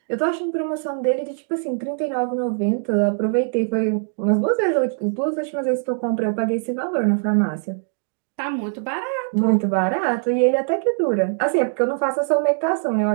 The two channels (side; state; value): left; silent; 64 dB below the other